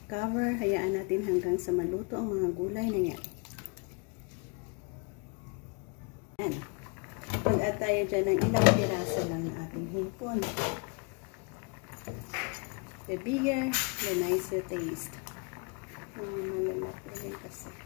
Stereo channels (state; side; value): quieter; right; 33.1 dB